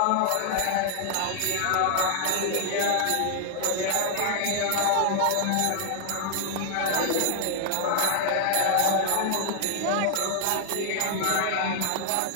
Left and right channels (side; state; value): both; different; correlation 0.00